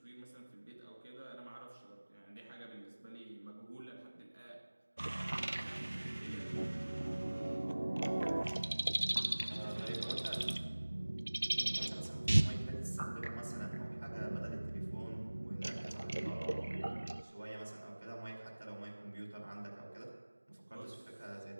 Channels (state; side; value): inverted; both; correlation -1.00